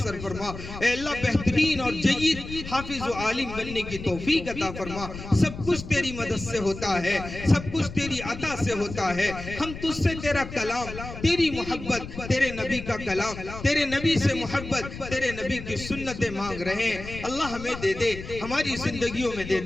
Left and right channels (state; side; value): noise; left; rumble, 11 dB below the sound